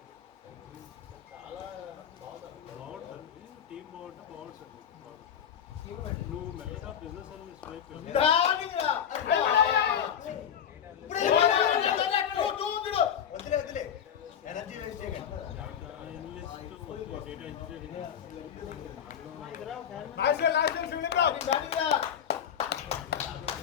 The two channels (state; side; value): quieter; right; 8.7 dB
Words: చాలా బాగుంటుంది. టీం బాగుంటే బాగుంటుంది. నువ్వు మెల్లగా బిజినెస్ సర్వీస్ వైపు వదిలే ఎనర్జీ వేస్ట్ చేయకండి. డేటా ఇంజనీరింగ్